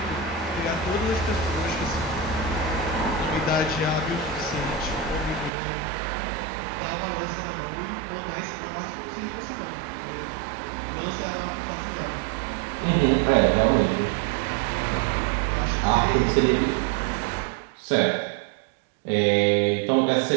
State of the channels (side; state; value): left; drops out; at 5.5 s